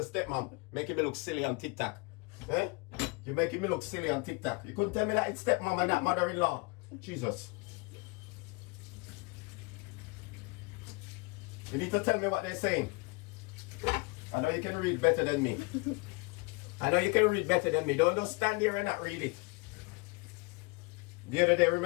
stepmom. Making me look silly on TikTok. Eh? You're making me look silly on TikTok. You couldn't tell me that it's stepmom and not mother-in-law. Jesus. You need to tell me what they're saying. I know you can read better than me. I know you can read better than me. Don't just stand there and not read it. The other day,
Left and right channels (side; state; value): right; quieter; 27.4 dB